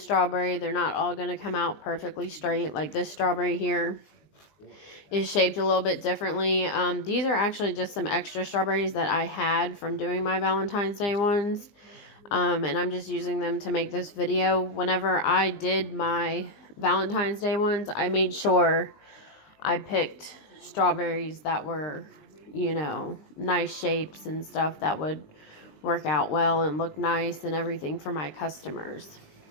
they're not all going to come out perfectly straight. Like this strawberry here is shaped a little bit differently. These are actually just some extra strawberries that I had from doing my Valentine's Day ones. And I'm just using them to make this video. Whenever I did my Valentine's Day ones, I made sure I picked strawberries that were, you know, nice shapes and stuff that would work out well and look nice and everything for my customers.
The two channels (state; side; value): late; right; 20 ms